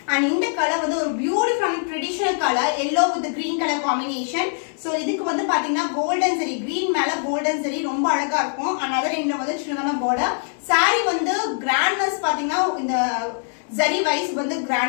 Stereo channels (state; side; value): silent; right; 60 dB below the other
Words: and இந்த கலர் வந்து ஒரு beautiful traditional colour yellow with green color combination. So இதுக்கு வந்து பாத்தீங்கன்னா கோல்டன் ஜெரி, கிரீன் மேல கோல்டன் ஜெரி ரொம்ப அழகா இருக்கும். and other end வந்து சின்னதான border. saree வந்து கிராண்ட்னஸ் பாத்தீங்கன்னா இந்த ஜரி வைஸ் வந்து